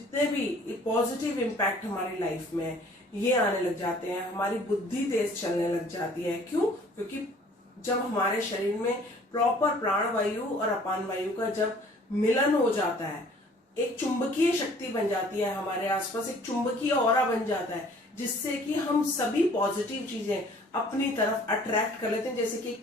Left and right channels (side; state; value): both; normal; correlation 0.54